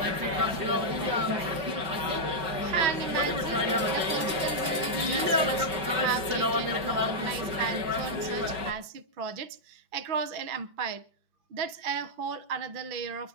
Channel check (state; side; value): late; left; 5.3 ms